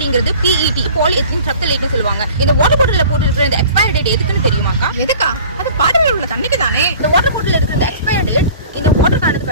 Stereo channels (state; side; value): inverted; both; correlation -0.45